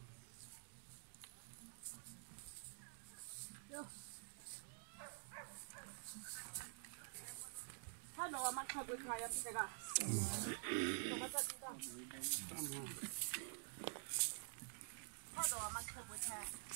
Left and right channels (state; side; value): silent; left; digital silence